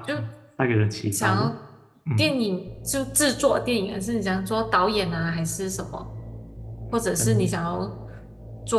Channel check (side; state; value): both; identical; correlation 1.00